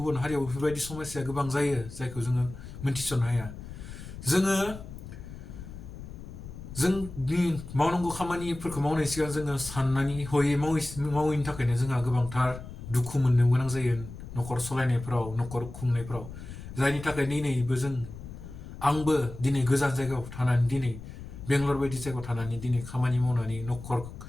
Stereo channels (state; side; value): noise; left; rumble, 12 dB below the sound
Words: हारियाव बेफोरबायदि समयसाया गोबां जायो, जायखौ जोङो मोनथिस'नो हाया। जोंनि मावनांगौ खामानिफोरखौ मावनायनि सिगां जोङो साननानै हयै मावैनि थाखायनो जोंहा गोबांथार दुखु मोननो गोनां जायो न'खर सलायनायफ्राव, न'खर खुंनायफ्राव। जायनि थाखाय आंबो दिनै गोजान जायगायाव थानानै, दिनै बेंगलर बायदि जायगायाव थानानै दिनै खामानि मावनानै